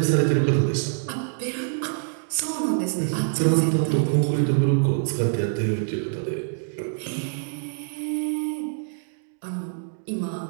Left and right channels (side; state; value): left; silent; digital silence